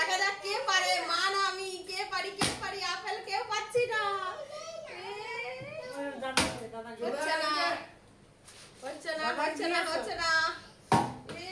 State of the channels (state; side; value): identical; both; correlation 1.00